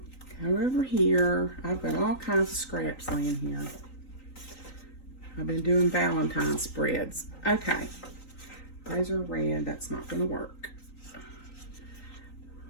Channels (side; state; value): right; late; 3.9 ms